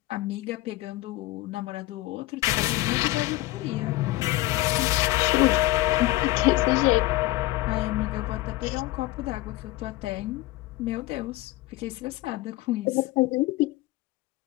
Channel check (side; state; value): right; quieter; 18.2 dB